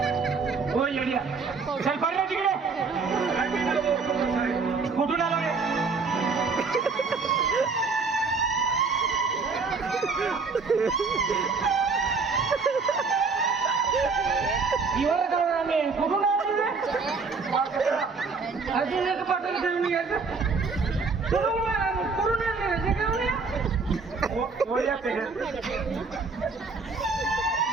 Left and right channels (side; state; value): left; quieter; 4.6 dB